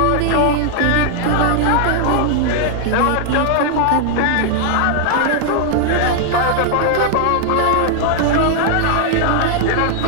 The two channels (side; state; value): both; different; correlation 0.00